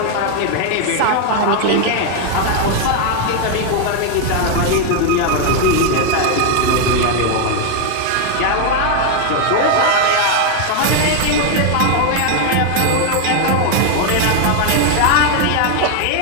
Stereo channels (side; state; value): both; different; correlation 0.01